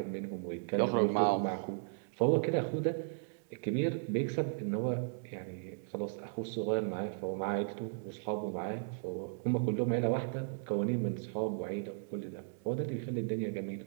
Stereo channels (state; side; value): silent; left; digital silence